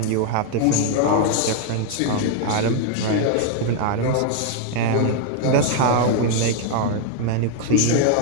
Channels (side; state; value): both; different; correlation 0.00